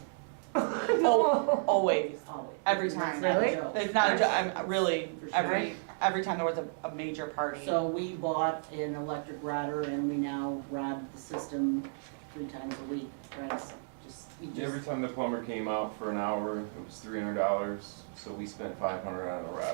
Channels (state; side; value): silent; left; digital silence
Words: No. Always. always. Every That's time. not a Really? joke. It's not, I'm really, For sure. every time there was a major party. So we bought an electric rodder and we now rod the system 3 times a week, right? You just- Every time the plumber came out for an hour, it was $300, so we spent $500 on a